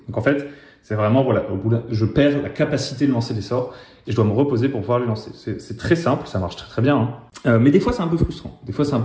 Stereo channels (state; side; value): identical; both; correlation 1.00